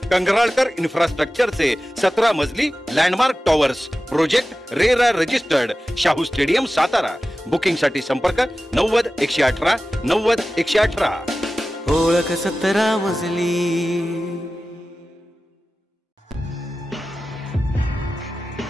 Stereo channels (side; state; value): both; normal; correlation 0.95